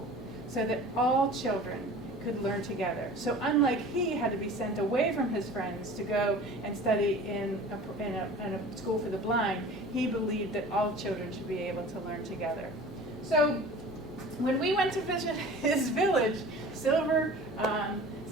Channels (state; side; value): normal; both; correlation 0.41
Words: so that all children could learn together. So unlike he had to be sent away from his friends to go and study in a school for the blind, he believed that all children should be able to learn together. So when we went to visit his village, Silver